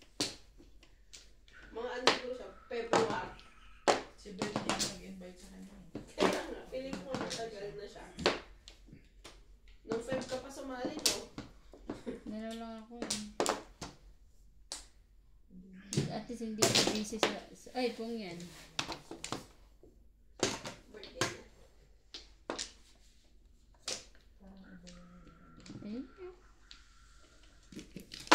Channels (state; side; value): identical; both; correlation 1.00